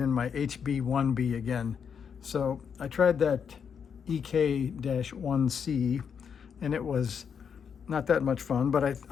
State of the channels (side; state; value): right; quieter; 7.0 dB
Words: my HB-1B again. So I tried that EK-1C, and it was not that much fun, but